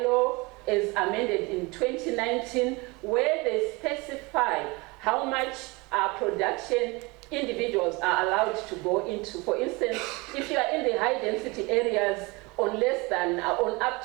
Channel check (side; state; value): left; quieter; 25.6 dB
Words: as amended in 2019, where they specify how much production individuals are allowed to go into. For instance, if you are in the high density areas on less than, on up